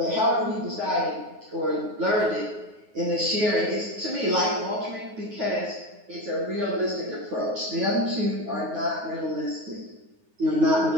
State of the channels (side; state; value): left; late; 9.5 ms